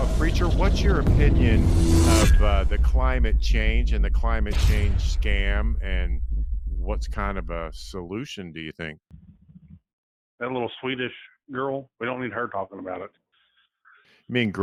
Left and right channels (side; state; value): both; identical; correlation 1.00